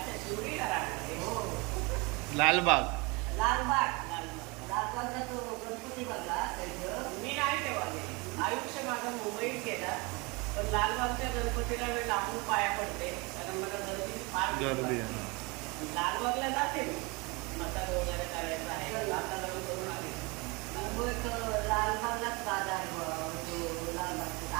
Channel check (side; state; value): left; quieter; 27.3 dB